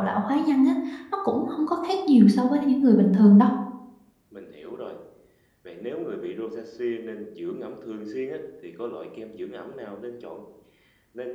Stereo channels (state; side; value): identical; both; correlation 1.00